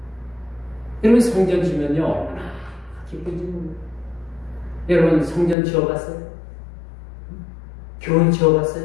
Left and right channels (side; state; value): right; drops out; at 5.6 s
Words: 여러분, 성전 지면요 얼마나 기쁜지 모릅니다. 여러분, 성전 지어봤어요? 교회